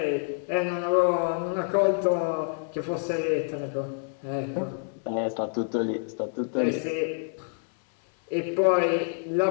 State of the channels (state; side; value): silent; right; 60 dB below the other